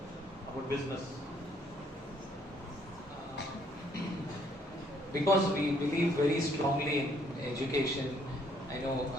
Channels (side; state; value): both; normal; correlation 0.66